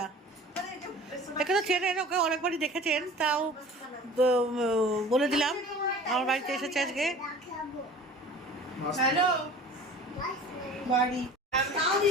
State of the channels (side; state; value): both; normal; correlation 0.43